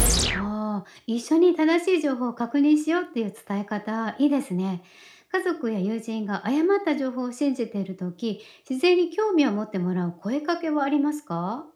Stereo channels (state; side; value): identical; both; correlation 1.00